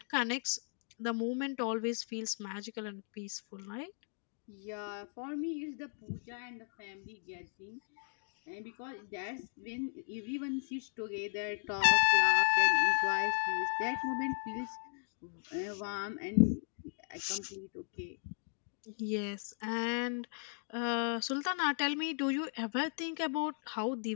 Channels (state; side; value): silent; right; 54 dB below the other